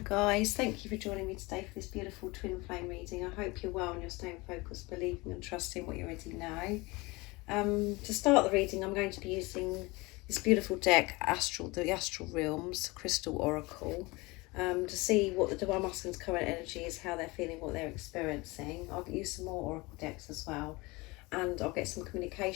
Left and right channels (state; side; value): quieter; right; 23.8 dB